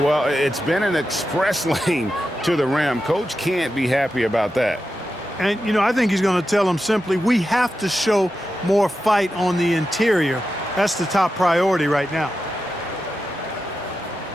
it's been an express lane to the rim. Coach can't be happy about that. And, you know, I think he's going to tell them simply, we have to show more fight on the interior. That's the top priority right now.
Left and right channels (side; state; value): both; normal; correlation 0.90